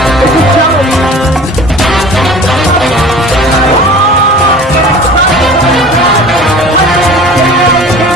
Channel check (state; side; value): normal; both; correlation 0.42